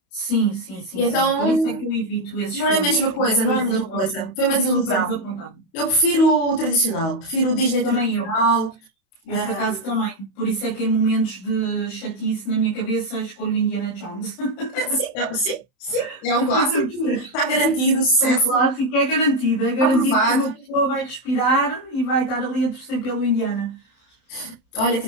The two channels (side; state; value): right; late; 31 ms